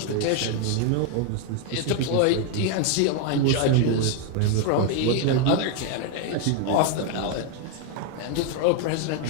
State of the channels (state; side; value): different; both; correlation 0.01